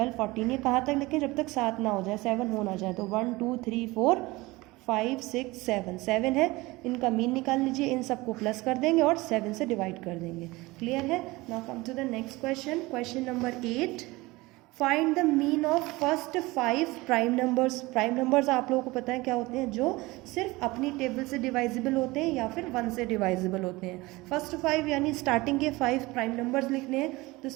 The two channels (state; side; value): quieter; left; 21.5 dB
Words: 14, ये कहाँ तक लिखें, जब तक 7 ना हो जाए, 7 हो ना जाए। तो 1 2 3 4 5 6 7, 7 है, इनका मीन निकाल लीजिए, इन सबको प्लस कर देंगे और 7 से डिवाइड कर देंगे। क्लियर है। Now come to the next question, question number 8, find the mean of first 5 prime numbers. Prime numbers आप लोगों को पता है क्या होते हैं, जो सिर्फ अपनी टेबल से डिवाइजिबल होते हैं या फिर 1 से डिवाइजिबल होते हैं। फर्स्ट 5 यानी स्टार्टिंग के 5 प्राइम नंबर्स लिखने हैं। तो